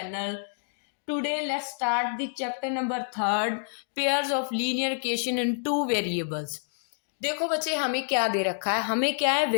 Today let's start the chapter number 3, pairs of linear equation in two variables. देखो बच्चे, हमें क्या दे रखा है, हमें क्या है,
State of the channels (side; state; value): right; silent; 59 dB below the other